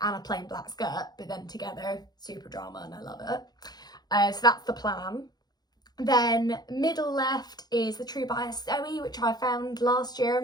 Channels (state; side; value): late; right; 0.19 ms